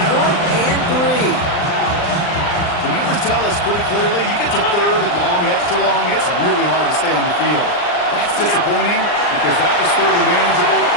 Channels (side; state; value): right; late; 39 ms